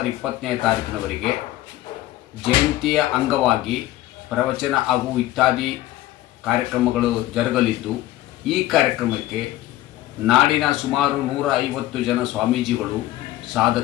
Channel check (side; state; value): right; quieter; 15.5 dB